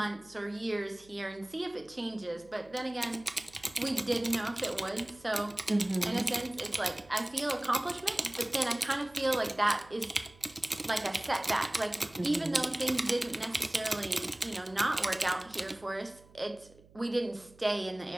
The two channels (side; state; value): right; noise; hum, 25 dB below the sound